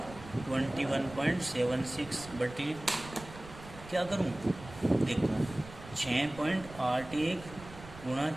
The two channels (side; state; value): right; noise; rumble, 16 dB below the sound